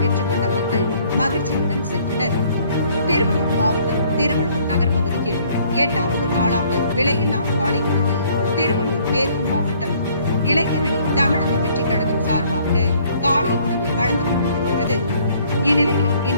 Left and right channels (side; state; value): both; inverted; correlation -0.60